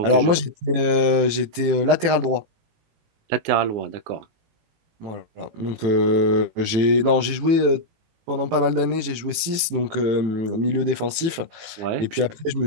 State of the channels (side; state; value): left; late; 18 ms